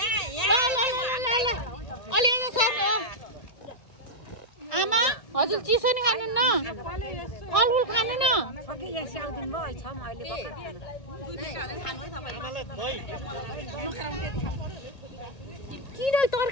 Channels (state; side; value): late; right; 1.9 ms